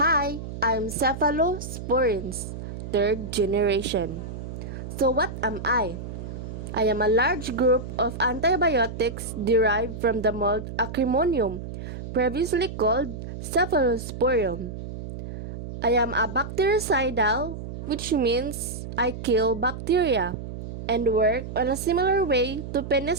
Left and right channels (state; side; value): noise; right; hum, 9 dB below the sound